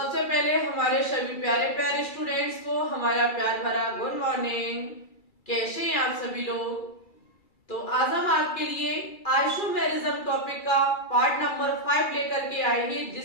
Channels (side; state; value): right; late; 2.3 ms